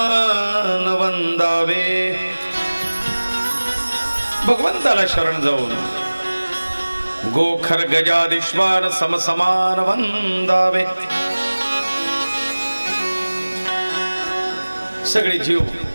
वंदावे. भगवंताला शरण जाऊन गोखर गजादिश्वार समसमान वंदावे. सगळे जीव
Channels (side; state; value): both; inverted; correlation -1.00